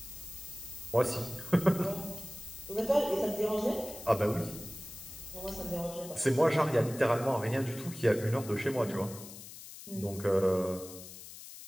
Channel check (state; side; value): noise; left; hiss, 14 dB below the sound